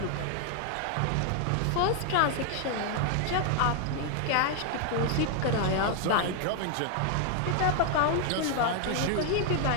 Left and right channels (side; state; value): both; different; correlation 0.00